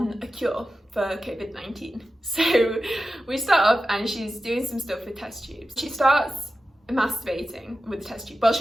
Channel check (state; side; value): normal; both; correlation 0.93